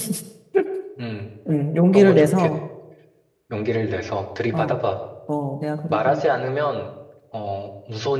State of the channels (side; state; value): both; identical; correlation 1.00